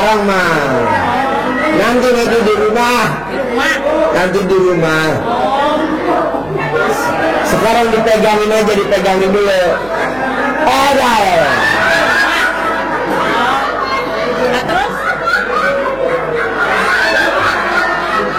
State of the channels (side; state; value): right; noise; hum, 20 dB below the sound